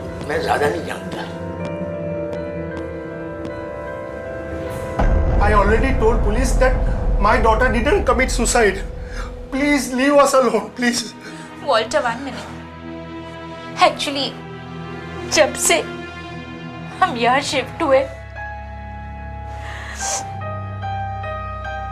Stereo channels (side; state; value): both; identical; correlation 1.00